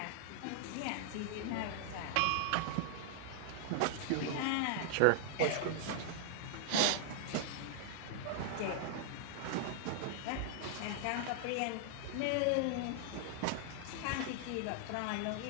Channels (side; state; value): both; different; correlation -0.01